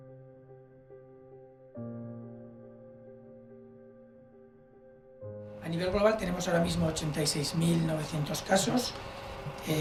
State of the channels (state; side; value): identical; both; correlation 1.00